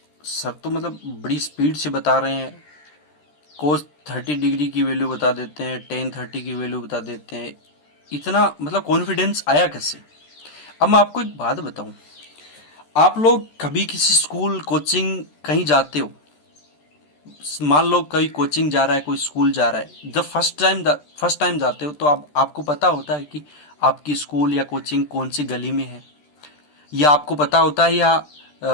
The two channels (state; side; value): late; right; 13 ms